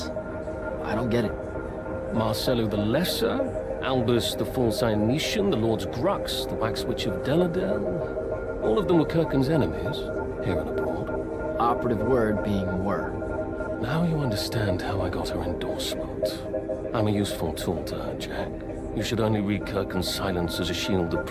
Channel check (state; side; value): identical; both; correlation 1.00